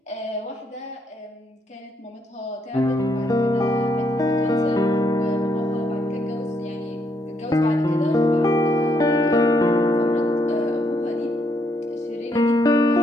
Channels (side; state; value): both; normal; correlation 0.74